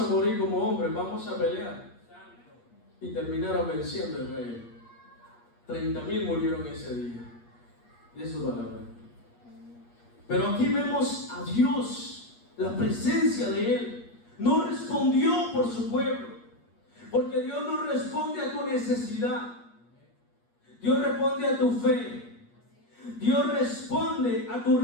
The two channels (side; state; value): right; late; 8.5 ms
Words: morir como hombres, vamos a pelear. Y terminaron venciendo el rey. 30,000 murieron ese día. De su palabra. Pero aquí vemos a Dios, la presencia de Él. No respondió por su pueblo. Porque Dios no responde a tu necesidad. Dios responde a tu fe. Dios responde a tu